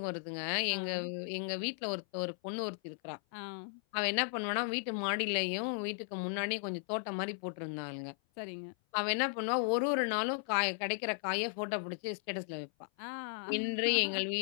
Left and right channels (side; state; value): right; silent; 54 dB below the other